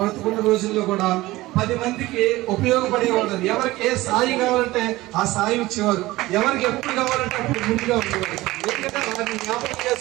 రోజుల్లో కూడా 10 మందికి ఉపయోగపడేవాళ్ళు. ఎవరికి ఏ సాయం కావాలంటే ఆ సాయం ఇచ్చేవారు, ఎవరికి ఎప్పుడు కావాలంటే అప్పుడు ముందుగా ఉండేవారు. ఎందుకంటే వారిని జ్ఞాపకం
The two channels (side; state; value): left; quieter; 18.5 dB